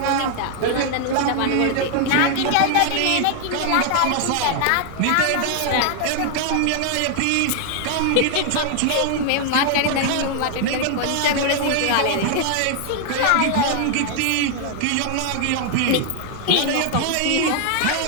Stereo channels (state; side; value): different; both; correlation 0.00